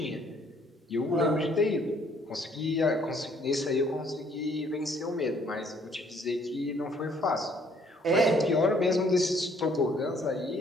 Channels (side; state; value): both; normal; correlation 0.63